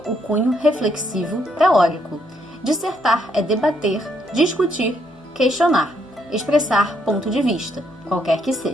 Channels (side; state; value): both; normal; correlation 0.73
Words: o cunho reflexivo teórico. Dissertar é debater, discutir, questionar, expressar ponto de vista, qualquer que